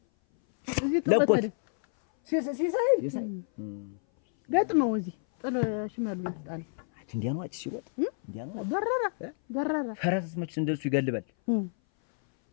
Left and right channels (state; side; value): silent; right; 57 dB below the other